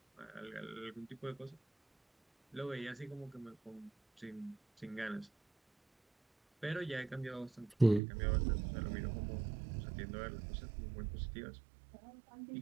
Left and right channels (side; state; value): left; drops out; at 8.0 s